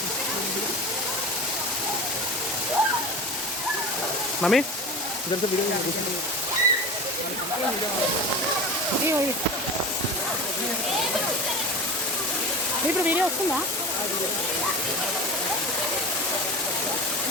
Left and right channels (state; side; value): normal; both; correlation 0.31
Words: మమ్మీ ఇప్పుడు వీడియో వస్తుందా